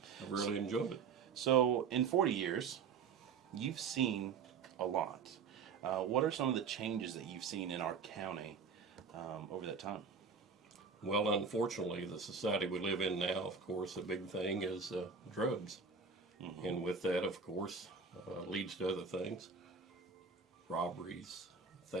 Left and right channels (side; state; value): left; quieter; 5.6 dB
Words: I've really enjoyed it. So in 40 years, you've seen a lot. What are some of the changes that you've seen in our county over that time? Well, unfortunately, the society we live in now, of course, a big thing is drugs. Mm-hmm. And with that, of course, leads to other things. Robberies,